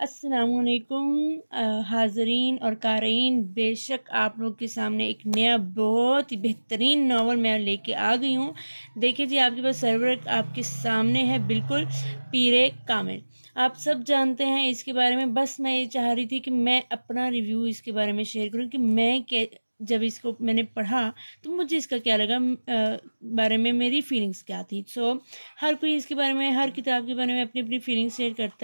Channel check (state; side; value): inverted; both; correlation -1.00